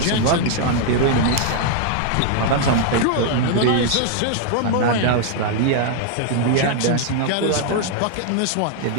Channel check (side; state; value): both; different; correlation 0.00